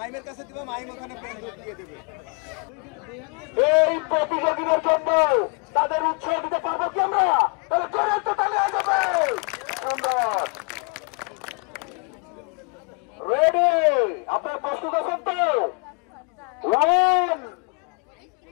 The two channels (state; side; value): quieter; right; 35.7 dB